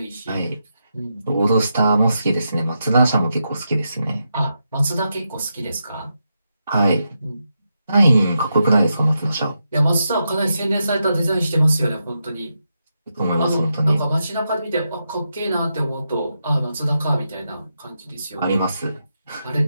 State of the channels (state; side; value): inverted; both; correlation -0.85